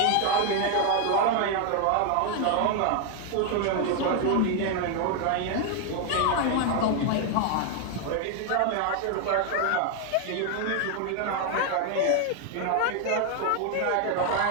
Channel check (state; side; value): different; both; correlation 0.00